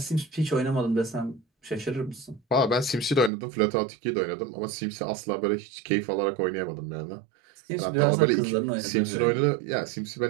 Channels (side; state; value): left; drops out; at 3.3 s